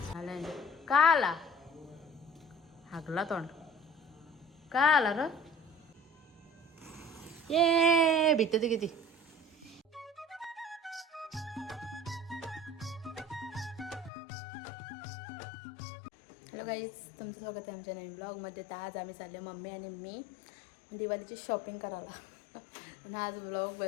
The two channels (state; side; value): drops out; right; at 14.1 s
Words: का आला हागला तोंड का आला र ये भीते ती किती. हॅलो गाईज, तुमचं स्वागत आहे आमच्या नवीन ब्लॉगमध्ये. तर आज आम्ही चाललो मम्मी आणि मी दिवाळीची शॉपिंग करायला. आणि आज ब्लॉग